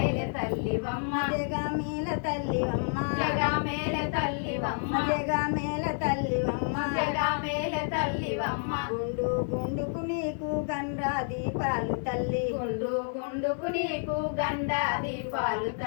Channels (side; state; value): right; silent; digital silence